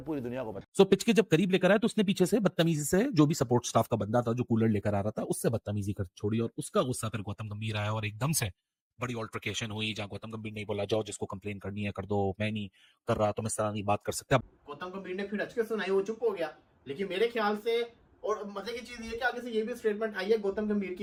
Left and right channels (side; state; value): both; identical; correlation 1.00